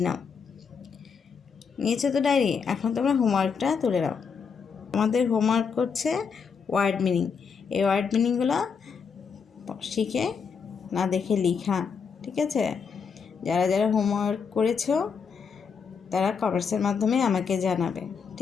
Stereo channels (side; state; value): right; quieter; 6.0 dB